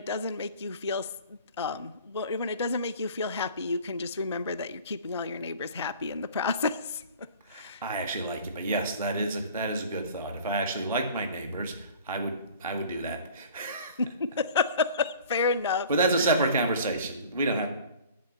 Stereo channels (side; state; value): both; inverted; correlation -0.46